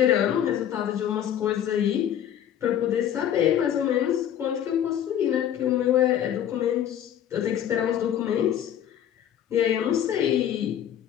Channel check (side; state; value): right; quieter; 10.3 dB